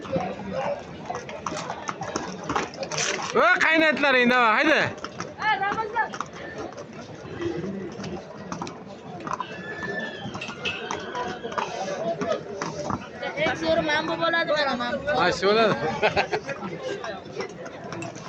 Va qaynatlaring nima? Haydi. Zo'r mana bu bo'ladi beraman. Ha, shu bo'ladi.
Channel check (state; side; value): identical; both; correlation 1.00